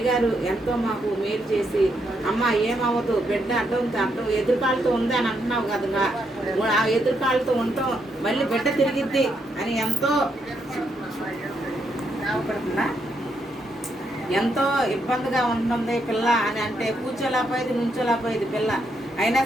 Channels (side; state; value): both; normal; correlation 0.78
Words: ఎంతో మాకు మేలు చేసి, అమ్మ ఏమవ్వదు, బిడ్డ అడ్డం ఎదురుకాలతో ఉంది అని అంటున్నావు కదా, ఆ ఎదురుకాలతో ఉంటాం, మళ్ళీ బిడ్డ తిరిగిద్ది అని ఎంతో ఇబ్బందిగా ఉంటుంది పిల్ల అని అంటే, కూర్చోలేకపోయేది, నుంచోలేకపోయేది పిల్ల. అయినా